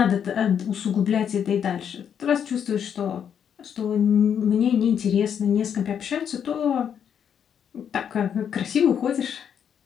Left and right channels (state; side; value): quieter; right; 8.3 dB